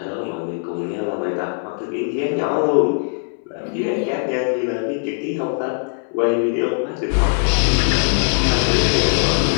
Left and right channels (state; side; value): silent; right; 66 dB below the other